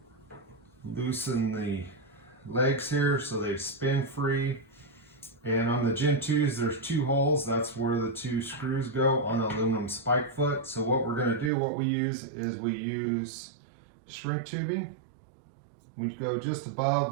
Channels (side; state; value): left; drops out; at 11.5 s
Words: loosen the legs here so they spin free. And on the Gen 2s, there's 2 holes. That's where the 2 screws go on the aluminum spike foot. So what we're going to do, what we use is we use shrink tubing. We go just